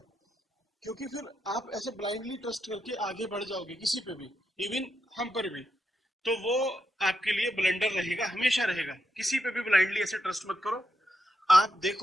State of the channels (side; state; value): both; normal; correlation 0.84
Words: क्योंकि फिर आप ऐसे ब्लाइंडली ट्रस्ट करके आगे बढ़ जाओगे किसी पे भी, इवन हम पर भी, तो वो आपके लिए ब्लंडर रहेगा, हमेशा रहेगा। किसी पे भी ब्लाइंडली ऐसे ट्रस्ट मत करो। आप